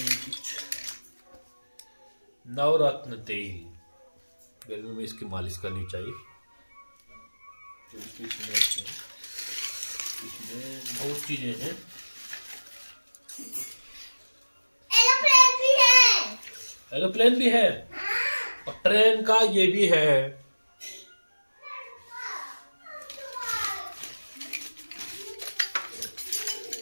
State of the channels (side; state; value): both; inverted; correlation -1.00